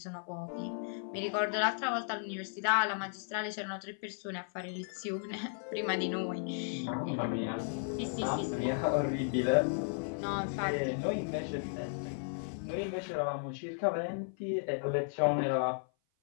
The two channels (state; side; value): silent; right; 54 dB below the other